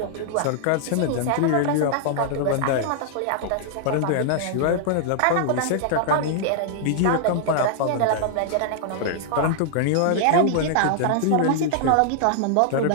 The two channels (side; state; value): both; different; correlation -0.01